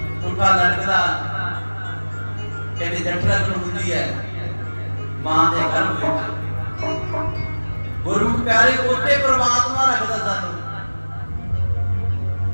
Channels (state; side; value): inverted; both; correlation -1.00